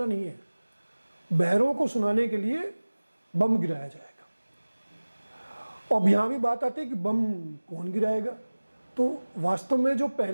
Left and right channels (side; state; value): both; inverted; correlation -1.00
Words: नहीं है, बहरों को सुनाने के लिए बम गिराया जाएगा। अब यहाँ भी बात आती है कि बम कौन गिराएगा। तो वास्तव में जो